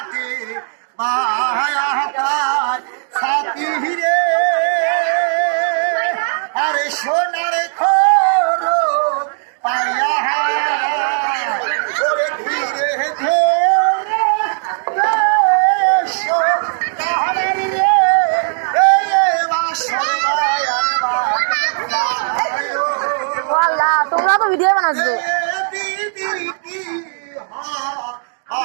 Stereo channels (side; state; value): left; silent; digital silence